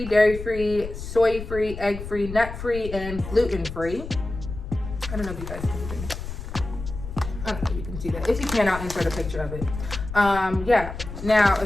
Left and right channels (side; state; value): left; noise; rumble, 9 dB below the sound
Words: dairy-free, soy-free, egg-free, nut-free, and gluten-free. I don't know if you guys can see it. I don't know if you can see that. If you can, I'll insert a picture of it. Yeah. Now,